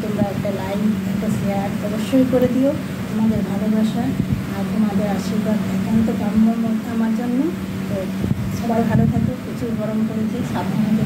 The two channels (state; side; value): identical; both; correlation 1.00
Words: তোমরা একটা লাইক একটা শেয়ার অবশ্যই করে দিও। তোমাদের ভালোবাসা আর তোমাদের আশীর্বাদ একান্ত কাম্য আমার জন্য। তো সবাই ভালো থাকো, প্রচুর গরম পড়েছে, সাবধানে